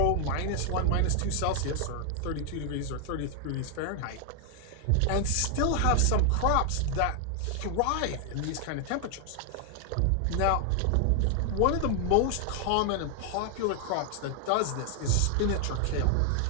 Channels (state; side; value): different; both; correlation 0.00